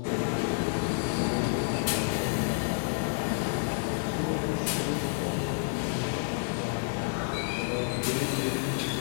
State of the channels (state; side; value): silent; right; digital silence